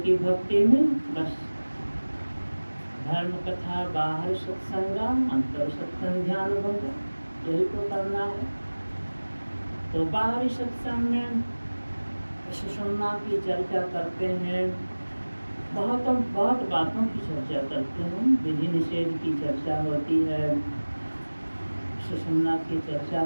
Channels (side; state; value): both; inverted; correlation -1.00